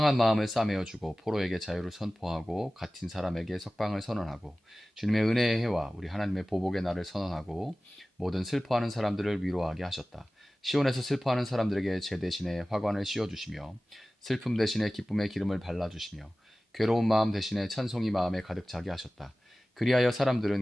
마음을 싸매어 주고 포로에게 자유를 선포하고 갇힌 사람에게 석방을 선언하고 주님의 은혜의 해와 우리 하나님의 보복의 날을 선언하고 모든 슬퍼하는 사람들을 위로하게 하셨다. 시온에서 슬퍼하는 사람들에게 제 대신에 화관을 씌워 주시며 슬픔 대신에 기쁨의 기름을 발라주시며 괴로운 마음 대신에 찬송이 마음에 가득 차게 하셨다. 그리하여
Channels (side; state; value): both; normal; correlation 0.97